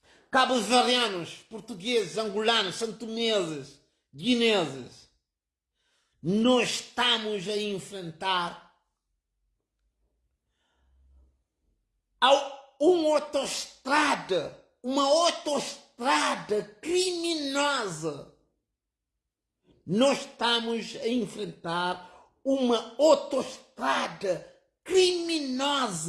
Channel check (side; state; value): both; identical; correlation 1.00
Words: Cabo-verdianos, portugueses, angolanos, santomeses, guineses. Nós estamos a enfrentar uma autoestrada criminosa. Nós estamos a enfrentar uma autoestrada